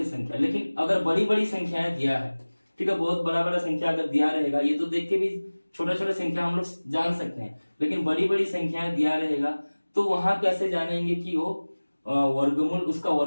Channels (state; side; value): inverted; both; correlation -1.00